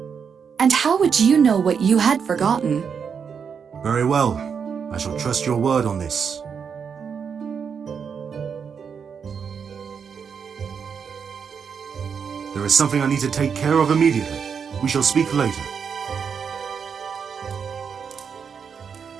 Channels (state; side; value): quieter; left; 6.6 dB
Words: And how would you know what you had forgotten? Very well. I shall trust your word on this. There is something I need to take care of immediately. We shall speak later.